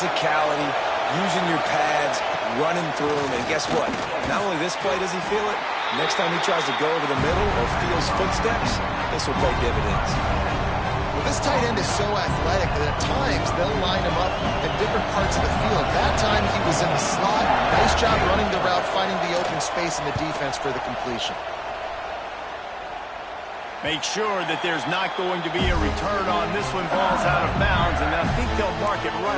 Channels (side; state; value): both; identical; correlation 1.00